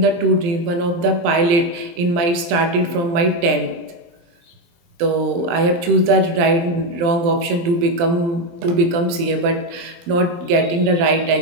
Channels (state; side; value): late; left; 23 ms